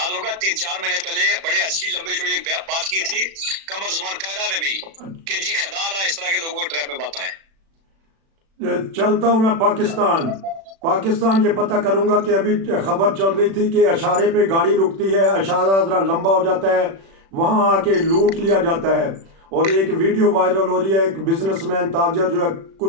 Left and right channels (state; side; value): late; left; 36 ms